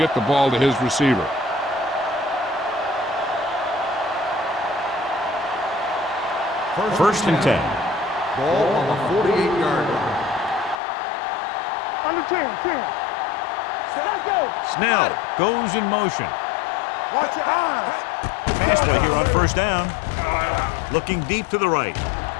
the ball to his receiver. First and 10. Ball on the 48-yard line. On the 10. Set, go. Snell goes in motion. Watch your eyes. Pass play here on 1st down. Looking deep to the right.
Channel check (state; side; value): drops out; right; at 10.8 s